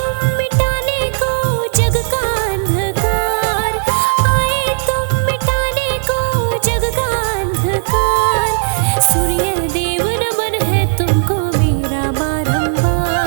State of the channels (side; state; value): left; silent; digital silence